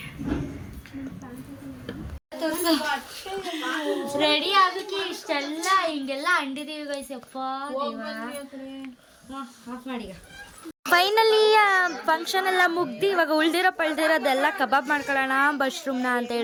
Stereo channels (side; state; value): both; identical; correlation 1.00